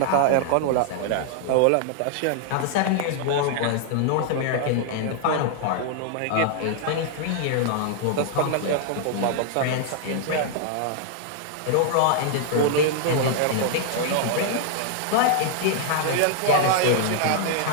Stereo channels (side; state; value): both; different; correlation 0.00